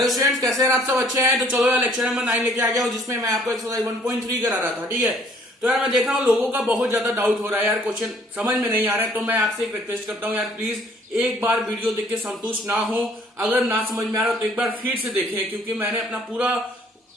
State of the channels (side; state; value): both; normal; correlation 0.60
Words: students, कैसे हैं आप सब? अच्छे हैं? तो चलो यार लेक्चर नंबर 9 लेके आ गया हूँ, जिसमें मैं आपको एक्सरसाइज 1.3 करा रहा था। ठीक है, तो यार मैं देख रहा हूँ लोगों का बहुत ज्यादा डाउट हो रहा है यार, क्वेश्चन समझ में नहीं आ रहा है। तो मैं आपसे एक रिक्वेस्ट करता हूँ यार, प्लीज एक बार वीडियो देख के संतुष्ट ना हो। अगर ना समझ में आ रहा हो तो एक बार फिर से देखें, क्योंकि मैंने अपना